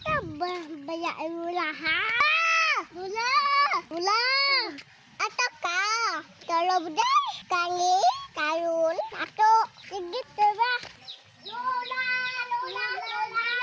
ba bayaan Lola, ha? Lola! Lola! Ata ka? Kalau baday? Kangi? Karun? Ato? Sige, diba? Lola! Lola! Lola!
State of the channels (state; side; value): identical; both; correlation 1.00